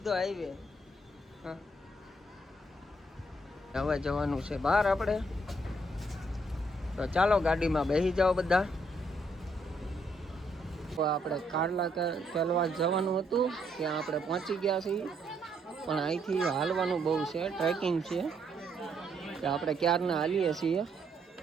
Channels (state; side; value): normal; both; correlation 0.72